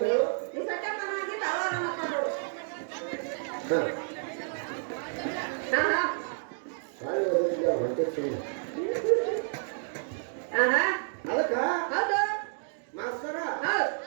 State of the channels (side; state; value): left; silent; digital silence